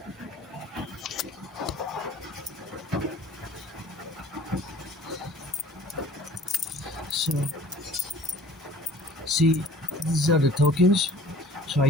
So, see, these are the tokens. So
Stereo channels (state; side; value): normal; both; correlation 0.48